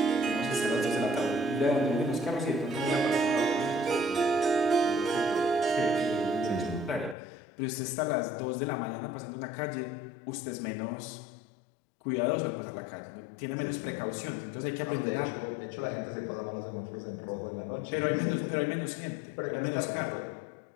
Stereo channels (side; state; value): right; drops out; at 7.2 s